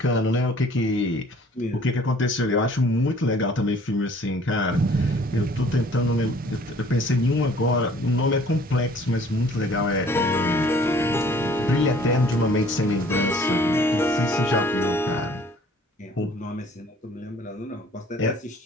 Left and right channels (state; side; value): normal; both; correlation 0.54